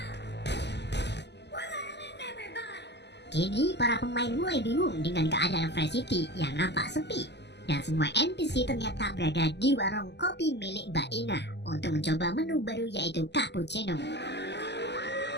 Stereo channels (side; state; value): right; late; 0.50 ms